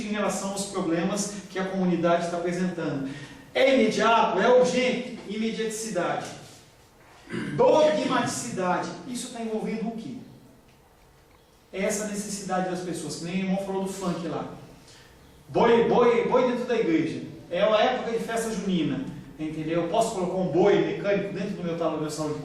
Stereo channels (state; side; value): identical; both; correlation 1.00